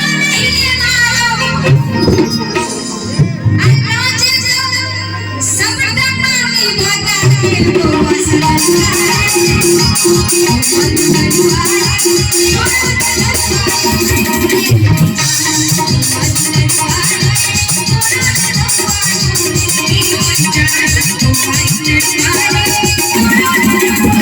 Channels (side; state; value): both; identical; correlation 1.00